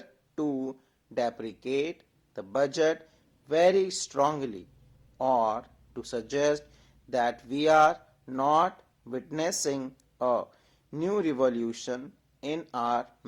to deprecate the budget very strongly or to suggest that we are not witnessing a new revolution in our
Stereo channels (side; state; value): both; identical; correlation 1.00